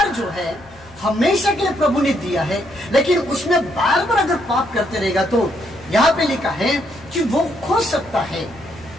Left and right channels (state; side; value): noise; left; hum, 26 dB below the sound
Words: जो है हमेशा के लिए प्रभु ने दिया है, लेकिन उसमें बार बार अगर पाप करते रहेगा तो यहाँ पे लिखा है कि वो खो सकता है।